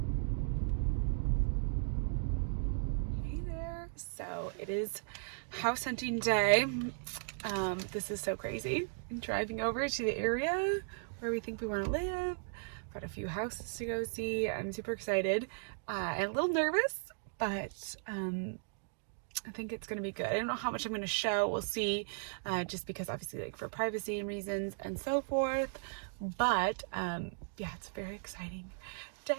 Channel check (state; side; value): silent; left; digital silence